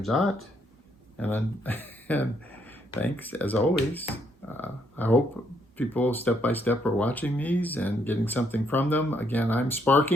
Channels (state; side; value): normal; both; correlation 0.72